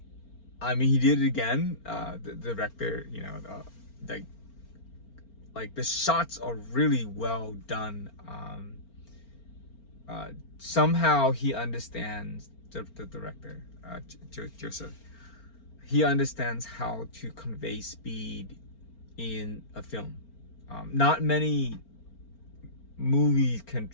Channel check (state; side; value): late; right; 4.4 ms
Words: did it again. The director, you know, like the shots are really well done. Somehow he understands, the director, Joseph. He understands how to convey speed in a film. Not many movies can